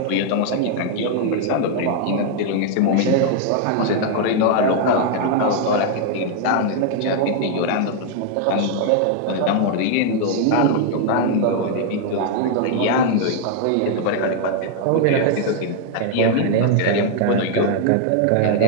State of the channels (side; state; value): both; different; correlation 0.00